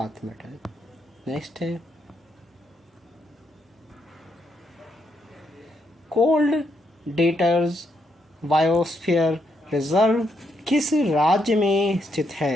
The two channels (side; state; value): both; normal; correlation 0.78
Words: मेडल। नेक्स्ट है, कोल्ड डेटर्स बायोस्फीयर रिजर्व किस राज्य में स्थित